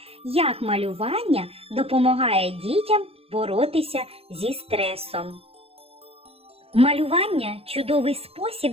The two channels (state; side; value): late; left; 0.28 ms